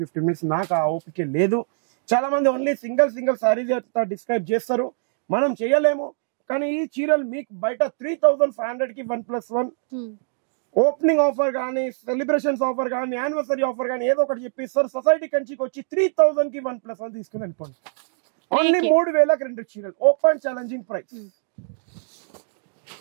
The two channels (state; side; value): silent; left; digital silence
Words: 15 మినిట్స్ నాకు ఆ ఓపిక లేదు. చాలా మంది ఓన్లీ సింగిల్ సారీస్ డిస్క్రైబ్ చేస్తారు, మనం చేయలేము. కానీ ఈ చీరలు మీకు బయట 3500 కి 1+1 ఓపెనింగ్ ఆఫర్ కానీ, సెలబ్రేషన్స్ ఆఫర్ కానీ, యానివర్సరీ ఆఫర్ కానీ ఏదో ఒకటి చెప్పిస్తారు. సొసైటీ కంచికి వచ్చి 3000 కి 1+1 తీసుకుని వెళ్ళిపోండి. ఓన్లీ 3000కి 2 చీరలు. Open challenging price.